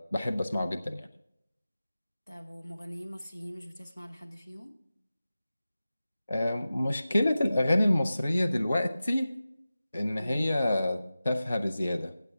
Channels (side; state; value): both; inverted; correlation -0.95